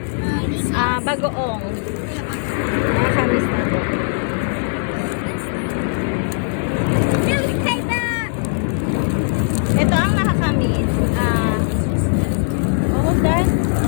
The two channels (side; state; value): right; silent; digital silence